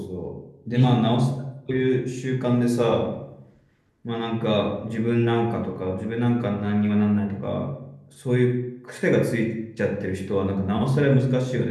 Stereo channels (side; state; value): both; identical; correlation 1.00